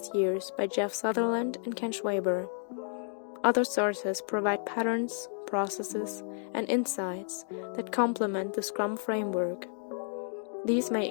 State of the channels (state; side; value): silent; right; digital silence